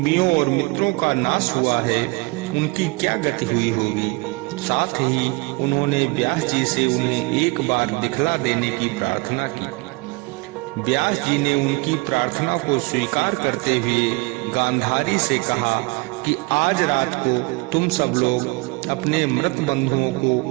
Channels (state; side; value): quieter; left; 25.3 dB